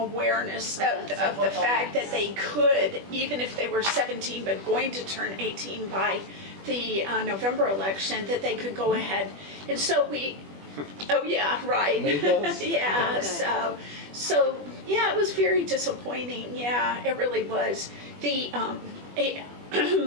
of the fact that they could, even if they were 17 but going to turn 18 by the November election, that they could go ahead. And so oh yeah, right. Yeah, Oh, so yeah, it was very disappointing. Yeah, it really was. Well,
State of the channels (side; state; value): left; late; 21 ms